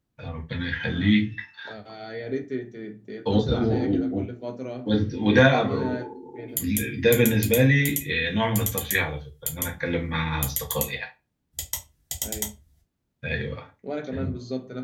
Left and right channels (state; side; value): identical; both; correlation 1.00